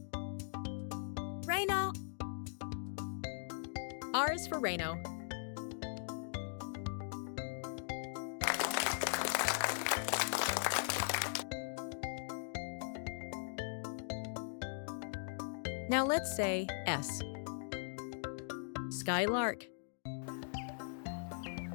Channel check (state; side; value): silent; right; digital silence